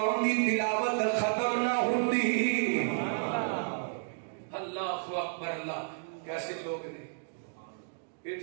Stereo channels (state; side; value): silent; left; digital silence